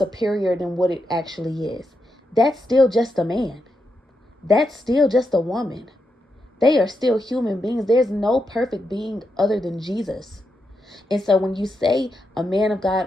than what it actually is. That's still just a man. That's still just a woman. They are still human beings. There's no perfect being other than Jesus. And so when you say a man of God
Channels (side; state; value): both; normal; correlation 0.84